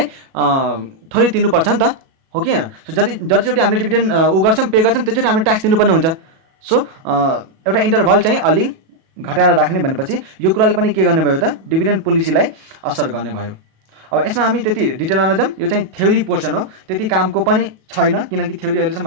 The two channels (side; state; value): left; late; 37 ms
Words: थोरै तिर्नुपर्छ नि त, हो कि होइन। सो जतिचोटि हामीले डिभिडेन्ड ऊ गर्छौँ पे गर्छौँ त्यसचोटि हामीले ट्याक्स तिर्नुपर्ने हुन्छ। सो एउटा इन्टरभल चाहिँ अलिक घटाएर राख्ने भनेपछि यो कुराले पनि के गर्ने भयो त डिभिडेन्ड पोलिसीलाई असर गर्ने भयो। अब यसमा हामी त्यति डिटेलमा नजाऊँ, यो चाहिँ थ्योरी पोर्सन हो, त्यति कामको पनि छैन किनकि थ्योरी